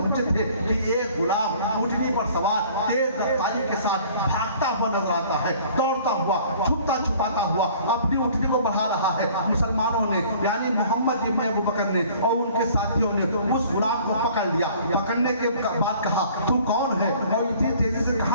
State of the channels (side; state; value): both; inverted; correlation -0.52